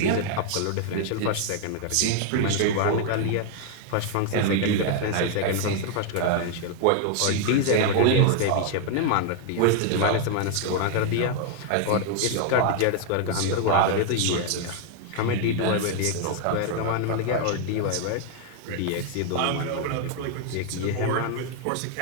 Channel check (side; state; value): both; different; correlation 0.00